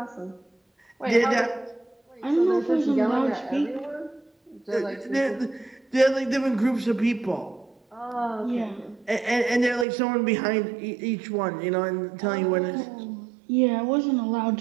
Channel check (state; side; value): drops out; left; at 9.9 s